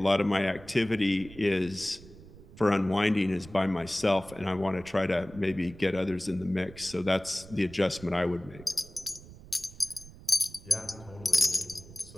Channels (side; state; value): right; noise; rumble, 19 dB below the sound